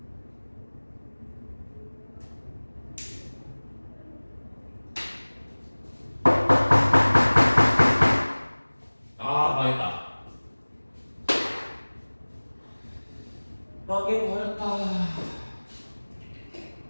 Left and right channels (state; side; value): inverted; both; correlation -1.00